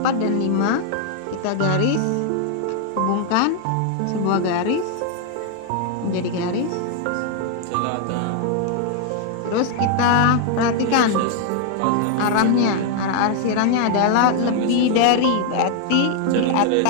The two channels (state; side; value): different; both; correlation 0.00